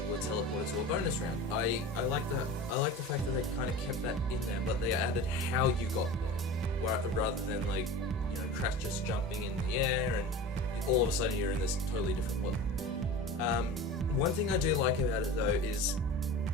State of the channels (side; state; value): both; normal; correlation 0.34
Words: were teleported to a bonus round. I like that. I like the fact that they kind of kept that in there, but they added how you got there, rather than Crash just jumping in the air and all of a sudden you're in this totally different world. One thing I do like about it though is,